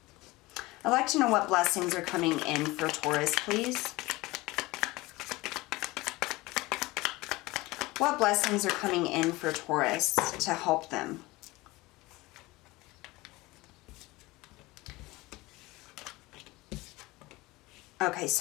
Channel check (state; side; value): quieter; right; 20.9 dB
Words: I'd like to know what blessings are coming in for Taurus, please. What blessings are coming in for Taurus to help them? Okay,